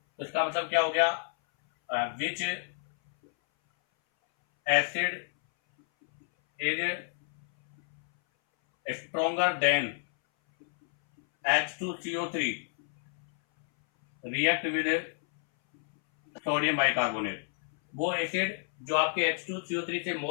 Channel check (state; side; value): silent; right; 58 dB below the other